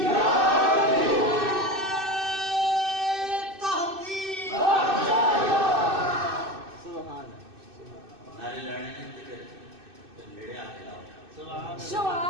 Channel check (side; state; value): left; late; 2.6 ms